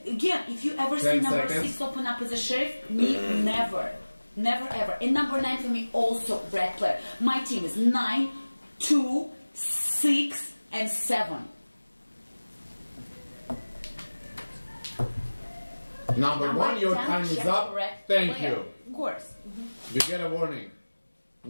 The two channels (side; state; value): both; inverted; correlation -1.00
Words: again, if you ever 10 seen number seconds. 6 open up as a sheriff? Me, never. Never ever. And number 9 for me, also red player. My team is 9, 2, 6, and 7. Number 1, your 10, time is check up. red Thank player. you. Of course. You get a warning.